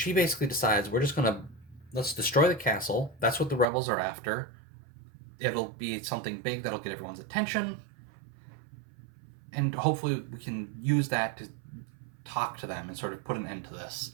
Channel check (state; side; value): drops out; left; at 3.7 s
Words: basically decides let's destroy the castle. That's what the rebels are after. It'll be something big that'll get everyone's attention. And hopefully we can use that to talk to them and sort of put an end to this.